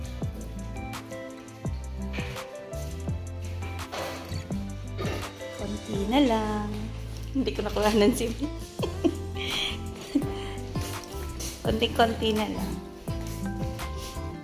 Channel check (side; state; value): both; identical; correlation 1.00